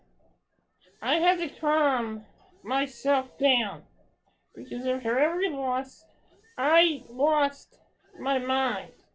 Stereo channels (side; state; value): both; identical; correlation 1.00